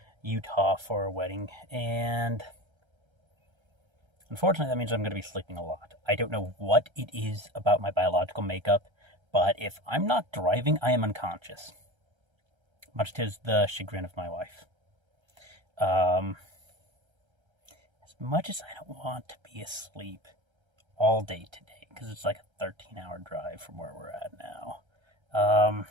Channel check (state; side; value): late; left; 1.3 ms